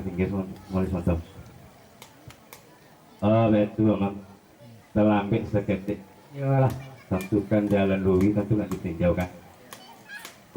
pinggir mulai mantap betul memang terlambat seketik ya lah tentukan jalan Lui tentu nak ditinjau kan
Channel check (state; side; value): identical; both; correlation 1.00